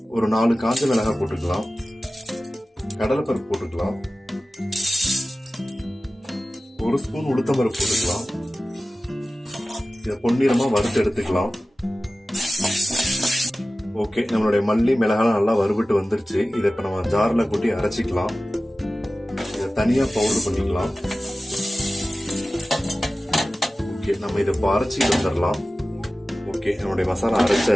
ஒரு 4 காஞ்ச மிளகாய் போட்டுக்கலாம். கடலைப்பருப்பு போட்டுக்கலாம். 1 ஸ்பூன் உளுத்தம்பருப்பு போட்டுக்கலாம். இதை பொன்னிறமா வறுத்து எடுத்துக்கலாம். ஓகே, நம்மளுடைய மல்லி மிளகாய் நல்லா வறுபட்டு வந்துருச்சு. இதை இப்ப நம்ம ஜார்ல கூட்டி அரைச்சிக்கலாம். இதை தனியா பவுடர் பண்ணிக்கலாம். ஓகே, நம்ம இதை இப்போ அரைச்சிட்டு வந்துடலாம். ஓகே, நம்மளுடைய மசாலா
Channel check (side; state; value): both; normal; correlation 0.96